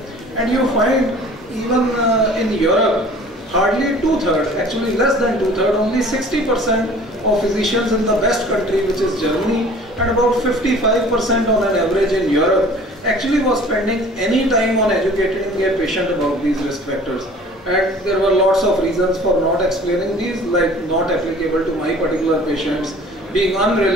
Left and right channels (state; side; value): normal; both; correlation 0.48